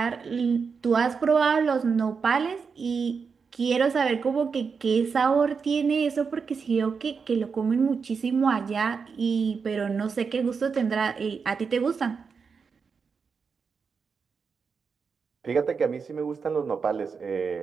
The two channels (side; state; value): left; quieter; 5.6 dB